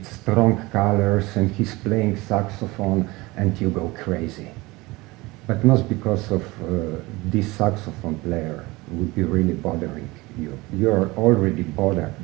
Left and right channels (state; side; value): quieter; left; 21.9 dB